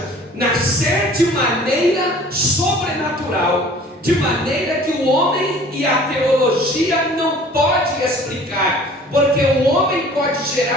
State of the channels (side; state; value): both; normal; correlation 0.49